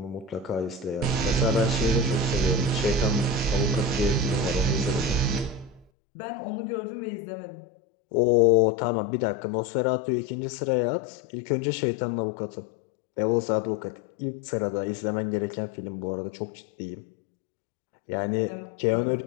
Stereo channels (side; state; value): right; drops out; at 5.9 s